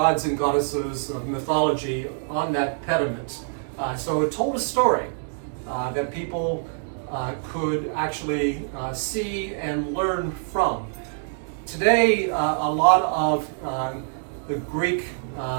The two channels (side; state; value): left; silent; digital silence